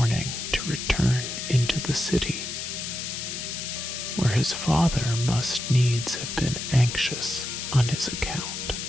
to return into the city, where his father must needs have been anxious on his account.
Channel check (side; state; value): left; noise; hiss, 5 dB below the sound